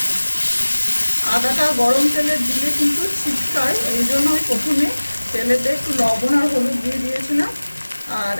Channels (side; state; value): both; inverted; correlation -1.00